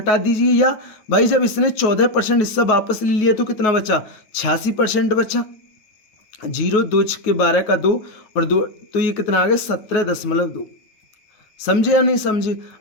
दीजिए, या भाई जब इसने 14% हिस्सा वापस ले लिया तो कितना बचा? 86% बचा। 0, 2 के 12 का 2 और 2, तो ये कितना आ गया? 17.2। समझे या नहीं समझे?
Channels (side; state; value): right; late; 9.4 ms